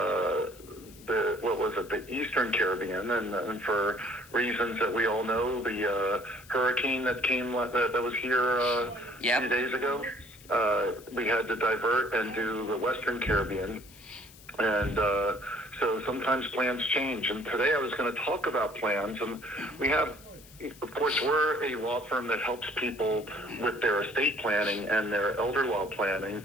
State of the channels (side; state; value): left; noise; hiss, 22 dB below the sound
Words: the Eastern Caribbean, and for reasons that we all know, the hurricane that came that was here a few days ago, we had to divert and do the Western Caribbean, and so sometimes plans change. And today I was going to talk about plans, and we have. Of course, we're a law firm that helps people with their estate planning and their elder law